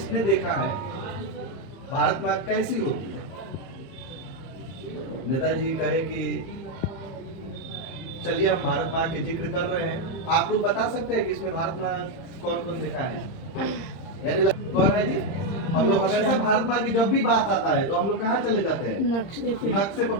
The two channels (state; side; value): late; right; 31 ms